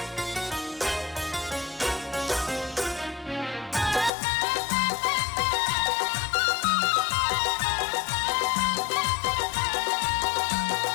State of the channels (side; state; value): right; drops out; at 4.1 s